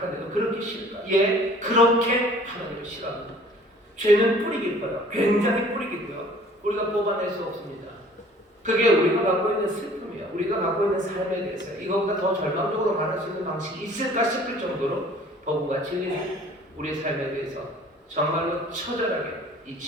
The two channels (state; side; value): normal; both; correlation 0.52